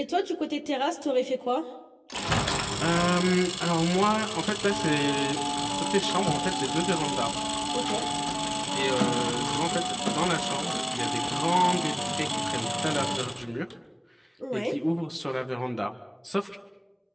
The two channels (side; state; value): both; identical; correlation 1.00